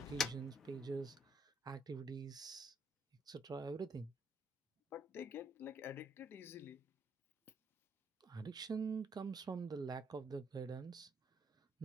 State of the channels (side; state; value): both; normal; correlation 0.69